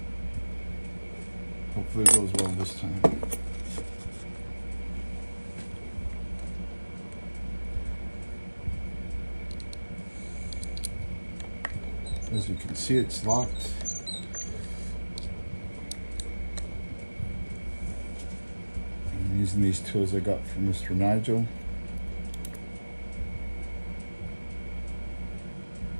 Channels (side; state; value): both; inverted; correlation -1.00